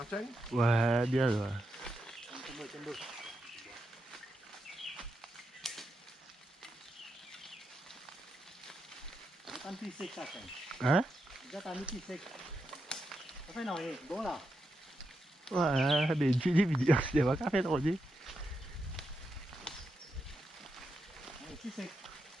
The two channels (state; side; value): normal; both; correlation 0.85